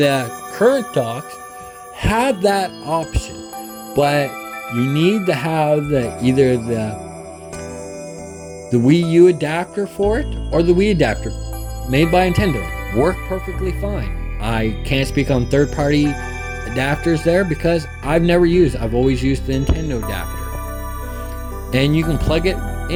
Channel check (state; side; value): identical; both; correlation 1.00